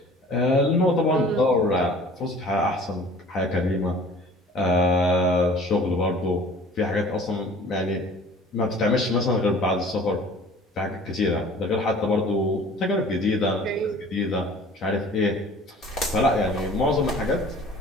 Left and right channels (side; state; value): both; normal; correlation 0.47